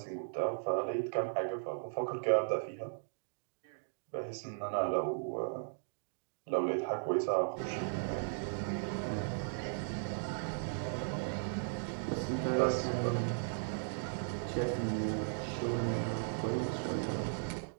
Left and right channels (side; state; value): left; silent; digital silence